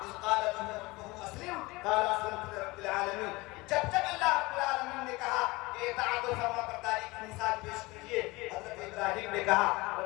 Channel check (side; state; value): right; quieter; 22.6 dB